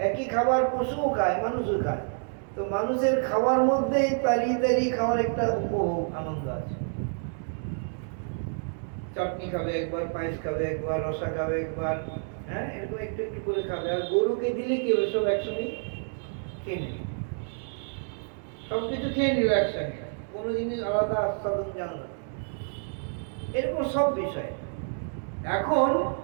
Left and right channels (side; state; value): left; silent; 59 dB below the other